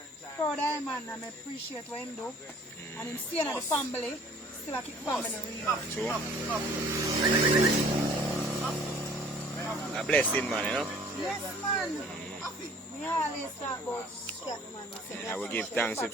Proud of him, man, and I appreciate what him do. And him staying at the family, still a keep family real. True. A blessing, man, you know? Yes, man. We always talk about that, man. I will give thanks if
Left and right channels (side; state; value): both; normal; correlation 0.52